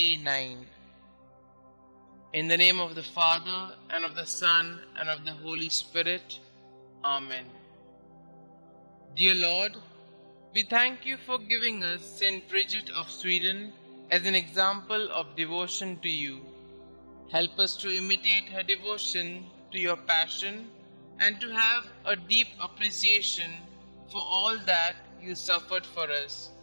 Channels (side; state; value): both; inverted; correlation -1.00